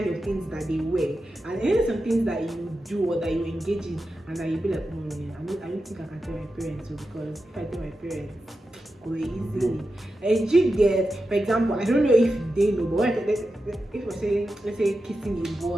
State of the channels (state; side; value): normal; both; correlation 0.90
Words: of things that they were. And then some things that you do or that you engage in and that you be like, I don't think I can tell my parents, because if I tell my parents, go easily. And you get, for example, I don't know if they know, but if we're saying, let's say kissing a